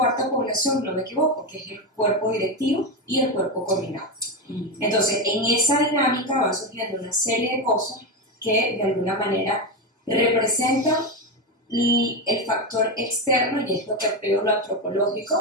población, no me equivoco, que es el cuerpo directivo y el cuerpo coordinado. Entonces, en esa dinámica van surgiendo una serie de cosas que de alguna manera representan el factor externo, y es lo que veo lo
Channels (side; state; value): both; normal; correlation 0.12